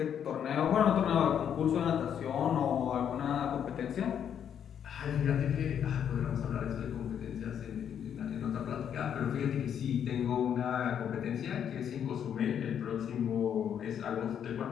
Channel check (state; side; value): quieter; right; 8.7 dB